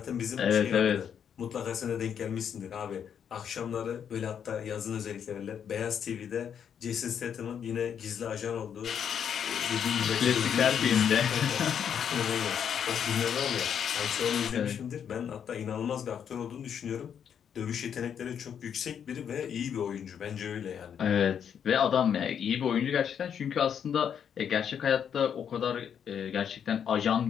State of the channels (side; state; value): right; quieter; 8.2 dB